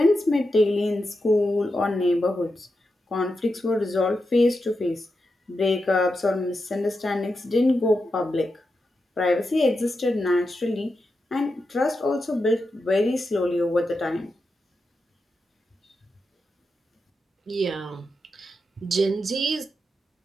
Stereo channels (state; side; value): normal; both; correlation 0.88